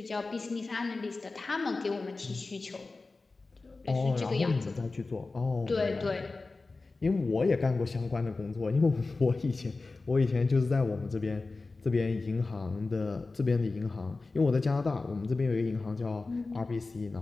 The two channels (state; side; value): quieter; right; 3.6 dB